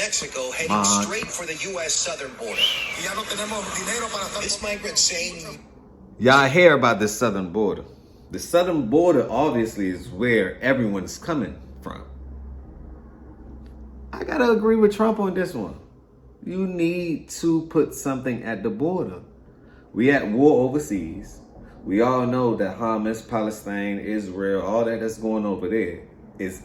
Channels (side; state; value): both; identical; correlation 1.00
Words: heading straight for the U.S. southern border. This migrant saying... Y'all hear about the southern border. The southern border obviously is where everyone's coming from. I gotta agree with Trump on this one. You need to put something at the border. We at war overseas. We all know that Hamas, Palestine, Israel, all that's going over there is